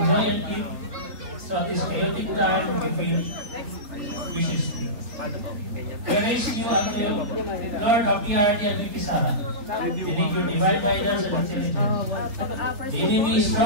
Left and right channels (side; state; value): left; late; 4.1 ms